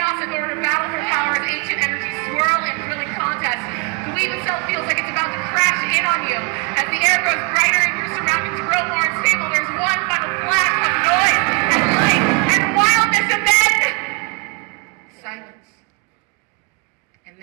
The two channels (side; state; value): left; quieter; 32.8 dB